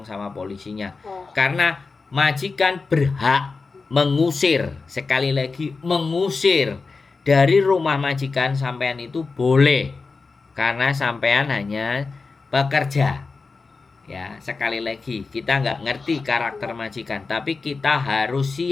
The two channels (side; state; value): right; quieter; 4.3 dB